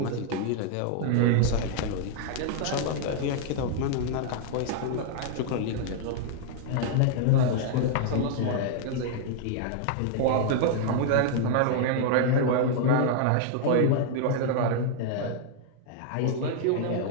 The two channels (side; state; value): both; different; correlation -0.01